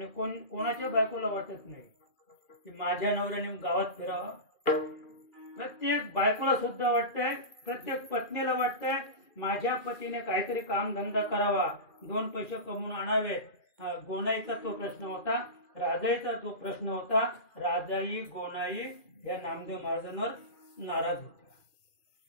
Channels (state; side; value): late; right; 2.4 ms